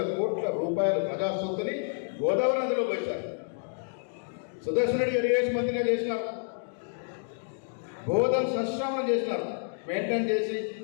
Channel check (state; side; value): silent; right; digital silence